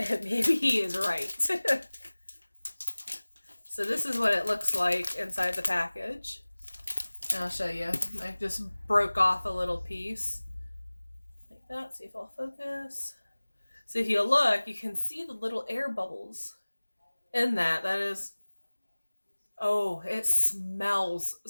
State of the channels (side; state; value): both; inverted; correlation -1.00